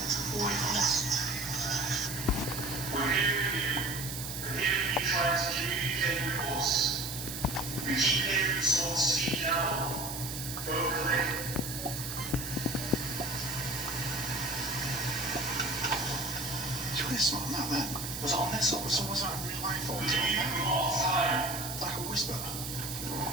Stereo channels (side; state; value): right; noise; hiss, 7 dB below the sound